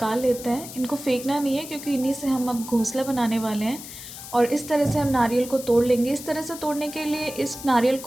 लेते हैं। इनको फेंकना नहीं है क्योंकि इन्हीं से हम अब घोंसला बनाने वाले हैं। और इस तरह से हम नारियल को तोड़ लेंगे। इस तरह से तोड़ने के लिए इस नारियल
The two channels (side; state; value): left; noise; hiss, 13 dB below the sound